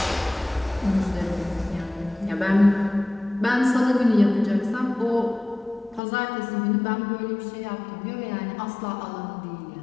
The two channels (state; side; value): drops out; right; at 6.0 s